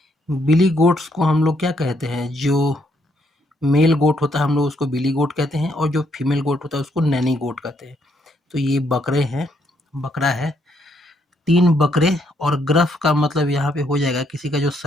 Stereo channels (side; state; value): both; normal; correlation 0.73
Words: Billy goats को हम लोग क्या कहते हैं? जो मेल गोट होता है हम लोग उसको बिली गोट कहते हैं, और जो फीमेल गोट होता है उसको नैनी गोट कहते हैं। तो ये बकरे हैं, बकरा है, 3 बकरे। और ग्रफ का मतलब यहाँ पे हो जाएगा किसी का जो